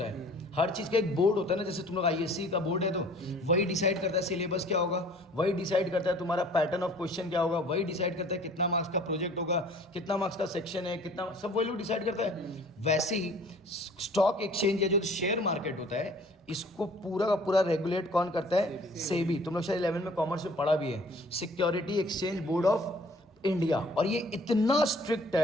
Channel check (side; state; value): both; normal; correlation 0.51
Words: है। हर चीज का एक बोर्ड होता है ना, जैसे तुम लोग आईएससी का बोर्ड है तो वही डिसाइड करता है सिलेबस क्या होगा, वही डिसाइड करता है तुम्हारा पैटर्न ऑफ क्वेश्चन क्या होगा, वही डिसाइड करता है कितना मार्क्स का प्रोजेक्ट होगा, कितना मार्क्स का सेक्शन है, कितना, सब वही लोग डिसाइड करता है। वैसे ही स्टॉक एक्सचेंज या जो शेयर मार्केट होता है इसको पूरा का पूरा रेगुलेट कौन करता है? सेबी। तुम लोग शायद 11 में कॉमर्स में पढ़ा भी है, security exchange board of India. और ये इतना स्ट्रिक्ट